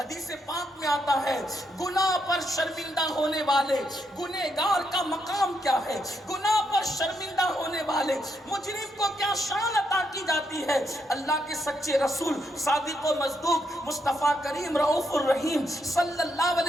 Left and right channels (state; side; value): normal; both; correlation 0.79